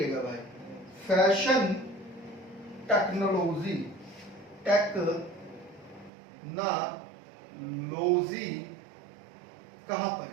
भाई, फैशन टेक्नोलॉजी, कहां पर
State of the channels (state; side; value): drops out; left; at 6.1 s